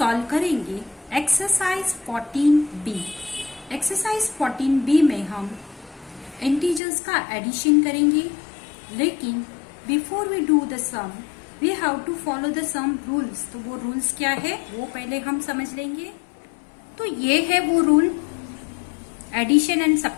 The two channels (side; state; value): right; drops out; at 6.8 s